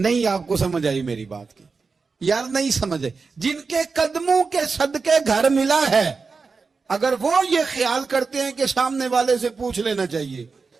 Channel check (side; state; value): left; quieter; 4.7 dB